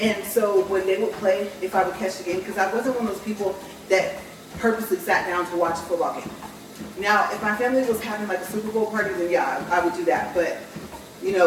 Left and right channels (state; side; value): identical; both; correlation 1.00